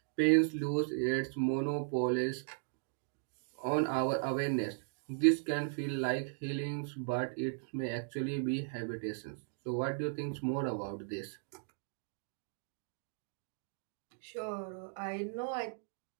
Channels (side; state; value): left; silent; digital silence